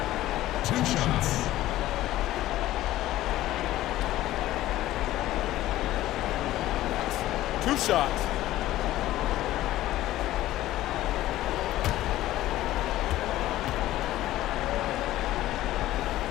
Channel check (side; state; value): right; quieter; 15.0 dB